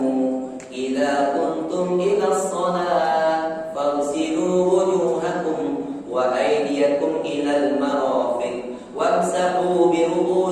idza kuntum ilas shalah faghsilu wujuhakum wa aydiyakum ilal marafiq wamsahu bi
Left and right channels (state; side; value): identical; both; correlation 1.00